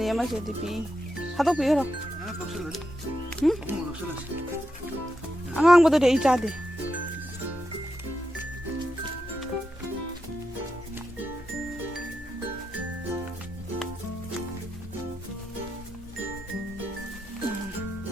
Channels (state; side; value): normal; both; correlation 0.86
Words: ꯑꯃꯁꯤꯗꯤ ꯄꯤ ꯊꯥꯗꯣꯛꯄꯤꯈ꯭ꯔꯣ ꯑꯉꯥꯡꯕꯗꯨꯗꯤ ꯑꯩ ꯆꯥꯗꯦ